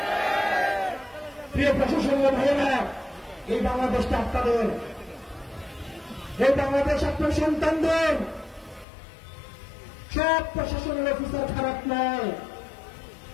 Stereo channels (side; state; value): right; drops out; at 8.8 s